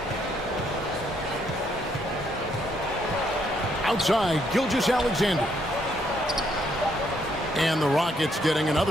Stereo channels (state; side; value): normal; both; correlation 0.72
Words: Outside, Gilgeous-Alexander. And the Rockets getting